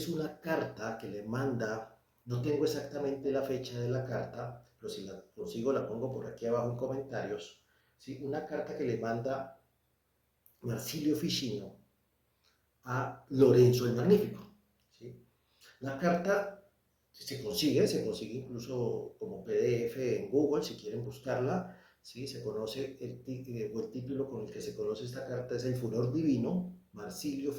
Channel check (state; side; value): identical; both; correlation 1.00